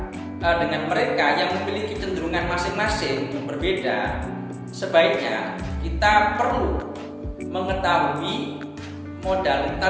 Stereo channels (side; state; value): both; identical; correlation 1.00